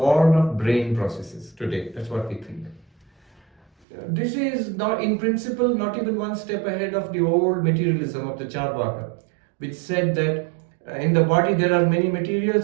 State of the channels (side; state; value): left; drops out; at 3.7 s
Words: of brain processes today. That's what we think. This is not, in principle, not even one step ahead of the old materialism of the Charvaka, which said that in the body there are many